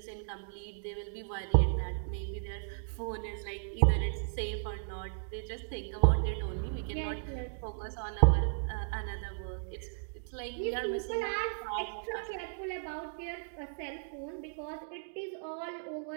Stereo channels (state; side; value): silent; left; digital silence